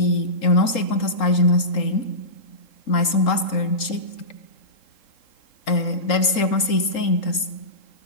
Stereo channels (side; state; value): right; late; 3.8 ms